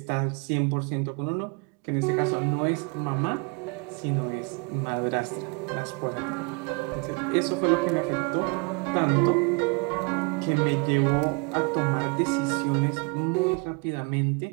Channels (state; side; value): quieter; left; 32.1 dB